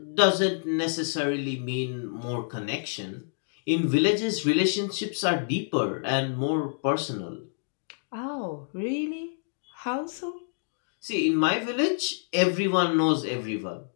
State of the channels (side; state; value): right; silent; digital silence